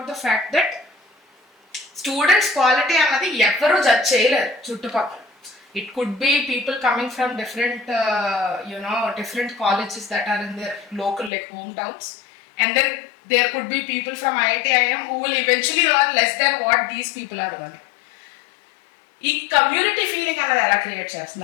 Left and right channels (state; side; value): drops out; right; at 11.3 s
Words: the fact that students quality అన్నది ఎవరు judge చేయలేరు చుట్టుపక్కల. It could be people coming from different different colleges that are in their local like hometowns, and then there could be people from IIT IIM who will eventually earn less than what these people are earning. ఈ community feeling అనేది ఎలా create